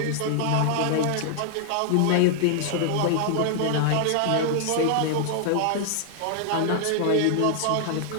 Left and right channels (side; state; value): both; different; correlation 0.00